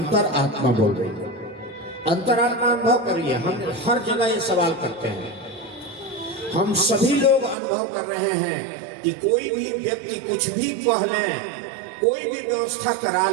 आत्मा बोल रही है। अंतरात्मा अनुभव करिए। हम हर जगह ये सवाल करते हैं, हम सभी लोग अनुभव कर रहे हैं कि कोई भी व्यक्ति कुछ भी कह लें, कोई भी व्यवस्था करा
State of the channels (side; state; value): left; drops out; at 7.6 s